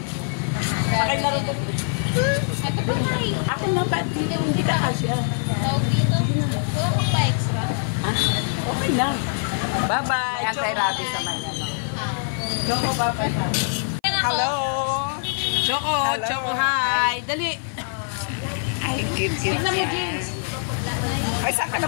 Pakilaro ko. Ito pa nga eh. Ako nga pa, hindi ka kasya. Tawag dito. Wala kang pa extra. Ha? Okay lang. Bye-bye. Anti-rabies naman yan. Choco, bye-bye. Hello! Choco, Choco, hi. Dali. Ay, cute. Tignan mo, Jeans. Ay, saan ka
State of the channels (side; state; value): right; silent; 56 dB below the other